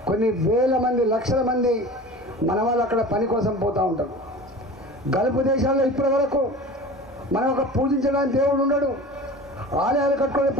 కొన్ని వేల మంది లక్షల మంది మన వాళ్ళు అక్కడ పని కోసం పోతూ ఉంటారు. గల్ఫ్ దేశాల్లో ఇప్పటి వరకు మనం ఒక పూజించడానికి దేవుడు ఉండడు, ఆలయాలు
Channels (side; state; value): both; normal; correlation 0.37